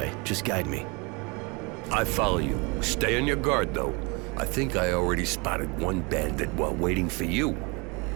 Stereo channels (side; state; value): left; quieter; 29.0 dB